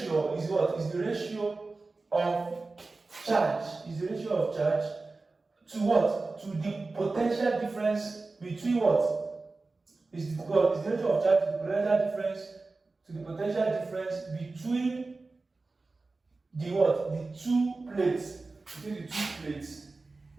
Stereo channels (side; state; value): left; quieter; 3.6 dB